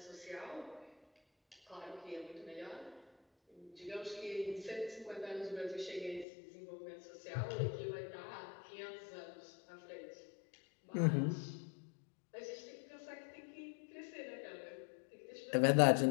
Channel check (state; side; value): drops out; right; at 6.2 s